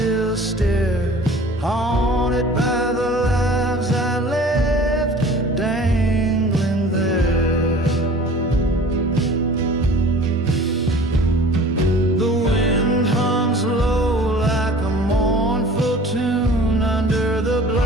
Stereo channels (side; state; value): both; normal; correlation 0.45